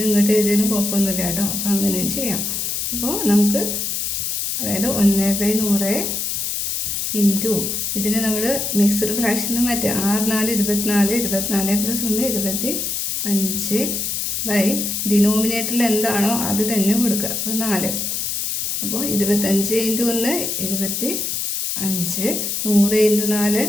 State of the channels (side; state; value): left; noise; hiss, 1 dB below the sound